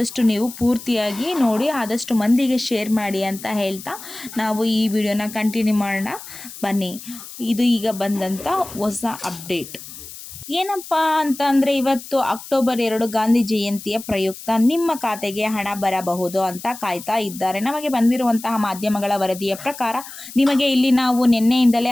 ನೀವು ಪೂರ್ತಿಯಾಗಿ ನೋಡಿ, ಆದಷ್ಟು ಮಂದಿಗೆ ಶೇರ್ ಮಾಡಿ ಅಂತ ಹೇಳ್ತಾ ನಾವು ಈ ವಿಡಿಯೋನ ಕಂಟಿನ್ಯೂ ಮಾಡೋಣ. ಬನ್ನಿ, ಇದು ಈಗ ಬಂದಂಥ ಹೊಸ ಅಪ್ಡೇಟ್ ಏನಪ್ಪ ಅಂತ ಅಂದರೆ, ಇವತ್ತು ಅಕ್ಟೋಬರ್ 2 ಗಾಂಧಿ ಜಯಂತಿಯ ಪ್ರಯುಕ್ತ ನಿಮ್ಮ ಖಾತೆಗೆ ಹಣ ಬರಬಹುದು ಅಂತ ಕಾಯ್ತಾ ಇದ್ದಾರೆ. ನಮಗೆ ಬಂದಿರುವಂತಹ ಮಾಧ್ಯಮಗಳ ವರದಿಯ ಪ್ರಕಾರ ನಿಮಗೆ ಇಲ್ಲಿ ನಾವು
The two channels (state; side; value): noise; left; hiss, 14 dB below the sound